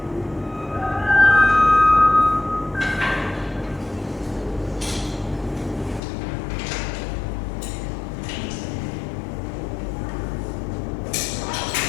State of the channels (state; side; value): drops out; right; at 6.0 s